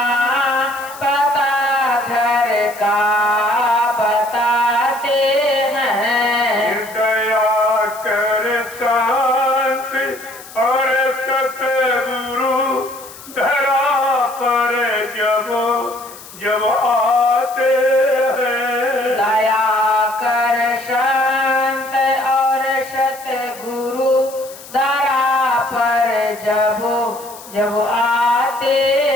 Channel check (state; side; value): noise; left; hiss, 18 dB below the sound